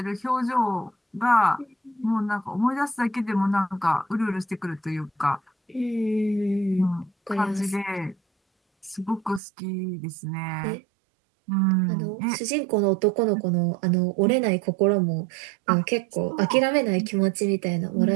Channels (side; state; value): left; drops out; at 9.4 s